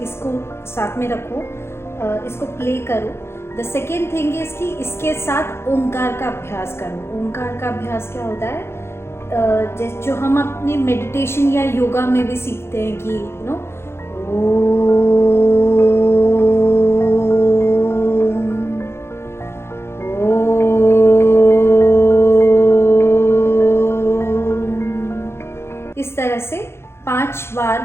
साथ में रखो, इसको प्ले करो। द सेकेंड थिंग इज़ कि इसके साथ ओंकार का अभ्यास करो। ओंकार का अभ्यास क्या होता है, जो हम अपने मेडिटेशन या योगा में भी सीखते हैं कि इस तरह से 5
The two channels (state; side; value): late; right; 0.12 ms